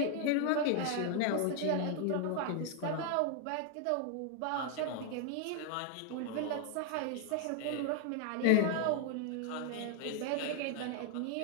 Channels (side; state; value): both; different; correlation 0.00